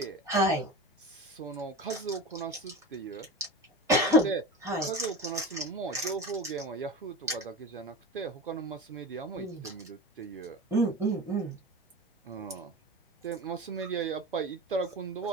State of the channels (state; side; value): normal; both; correlation 0.30